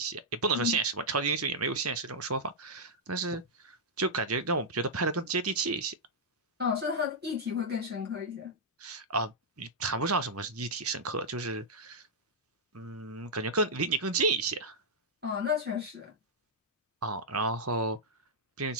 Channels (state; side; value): normal; both; correlation -0.08